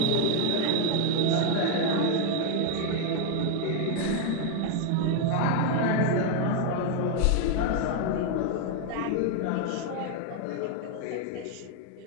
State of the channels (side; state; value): both; different; correlation 0.00